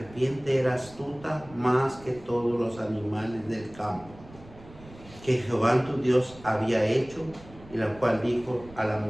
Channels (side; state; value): right; noise; rumble, 20 dB below the sound